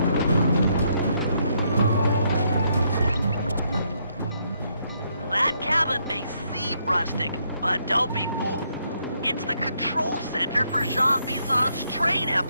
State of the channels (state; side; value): inverted; both; correlation -0.74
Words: Rustic, but don't be fooled. It's the control center for Jean Bisson's train